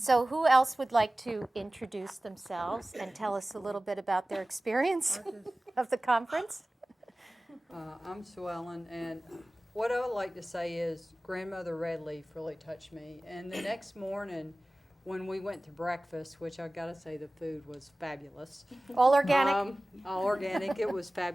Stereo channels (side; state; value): both; normal; correlation 0.98